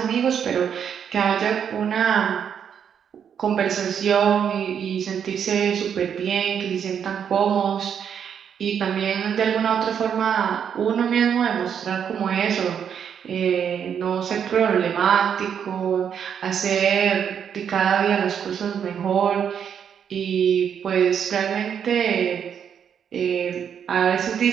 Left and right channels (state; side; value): quieter; left; 8.0 dB